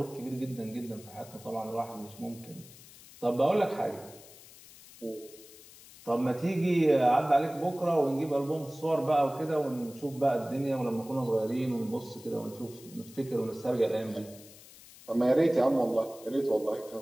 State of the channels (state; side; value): noise; left; hiss, 20 dB below the sound